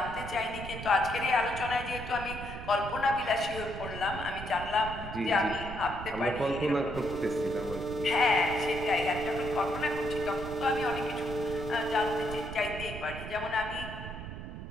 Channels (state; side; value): noise; right; rumble, 9 dB below the sound